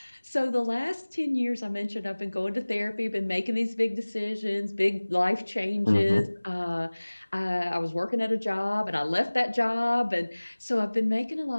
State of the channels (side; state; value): both; inverted; correlation -1.00